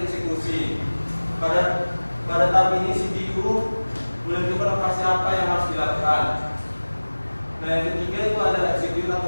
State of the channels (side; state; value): both; inverted; correlation -1.00